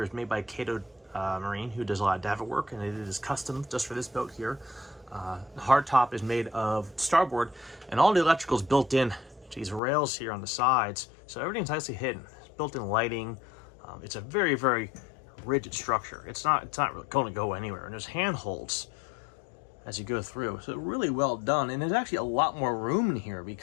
is made by Cato Marine, who does a lot of davit work, and it is custom just for this boat here. The hardtop is made of starboard, and all the electrical is built in to these rails here on the sides, so everything's nicely hidden. It's built-in lighting. It's a very, very rigid structure. It's not really going to go anywhere, and there's handholds as you go through, so really well done. And there's actually a lot more room in here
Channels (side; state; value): right; drops out; at 9.8 s